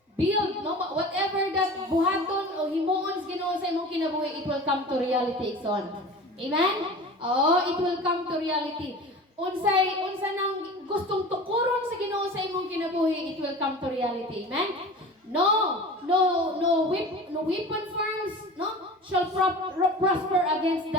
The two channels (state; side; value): normal; both; correlation 0.37